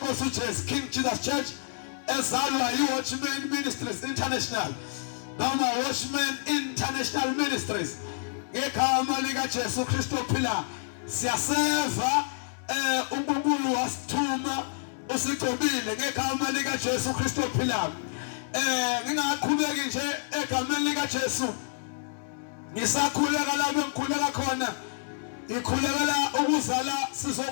uJesu King Jesus Church ezalwa yiWatchman Ministries International noma Watchman International Ministries ngegama likaJesu Kristu ophilayo. Siyaseva uNkulunkulu wasithuma usigcobile ngegama likaJesu Kristu ophilayo. Ngingaqhubeki nje egameni likaJesu. Ngisakhuleka lapho engikhuleka khona. Ikhulekela ukuzala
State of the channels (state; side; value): silent; right; digital silence